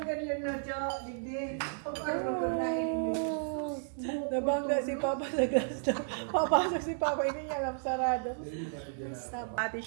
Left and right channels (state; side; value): silent; left; digital silence